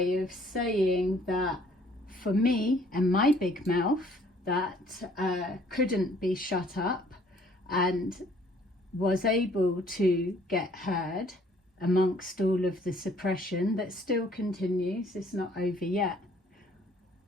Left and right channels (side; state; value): both; normal; correlation 0.60